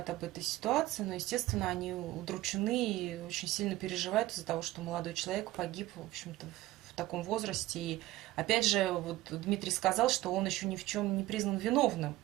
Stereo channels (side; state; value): left; quieter; 16.7 dB